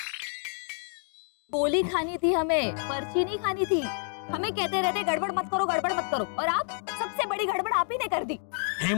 गोली खानी थी हमें, पर्ची नहीं खानी थी। हमें कहते रहते गड़बड़ मत करो, गड़बड़ मत करो, और आप सबसे बड़ी गड़बड़ आप ही ने कर दी।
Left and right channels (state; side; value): silent; right; 59 dB below the other